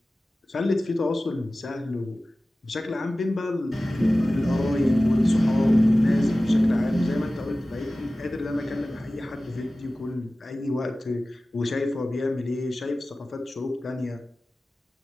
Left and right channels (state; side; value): normal; both; correlation 0.96